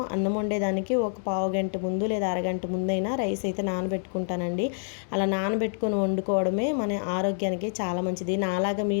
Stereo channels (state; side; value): silent; right; digital silence